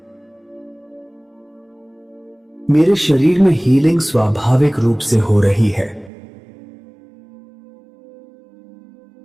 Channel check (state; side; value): drops out; left; at 6.1 s